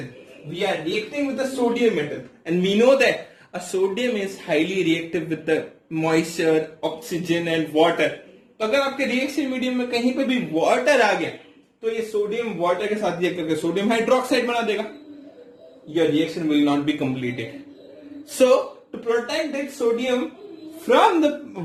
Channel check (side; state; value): both; identical; correlation 1.00